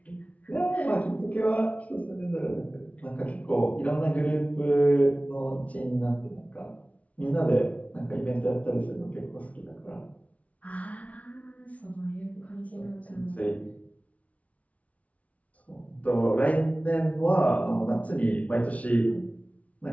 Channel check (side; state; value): right; late; 0.067 ms